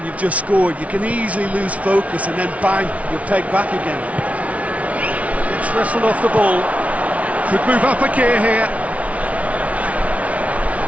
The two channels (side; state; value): left; late; 0.066 ms